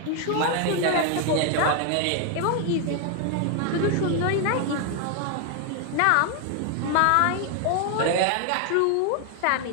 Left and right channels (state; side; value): different; both; correlation 0.00